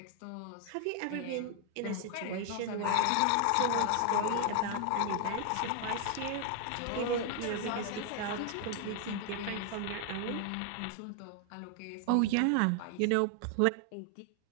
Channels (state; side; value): different; both; correlation 0.00